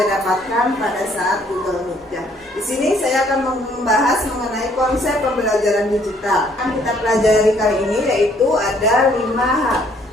dapatkan pada saat Google Meet ya. Di sini saya akan membahas mengenai konsep pembelajaran digital. Yang kita pelajari kali ini yaitu ada 5 hal.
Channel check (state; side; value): normal; both; correlation 0.64